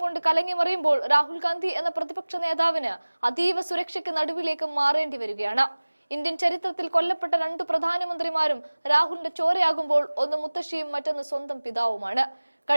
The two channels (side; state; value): both; inverted; correlation -1.00